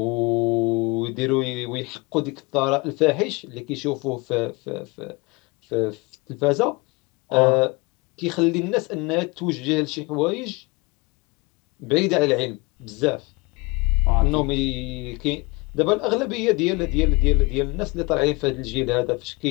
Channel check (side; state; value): right; quieter; 26.0 dB